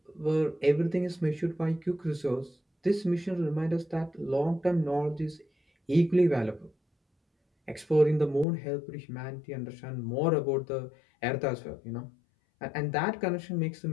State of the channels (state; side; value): drops out; right; at 8.5 s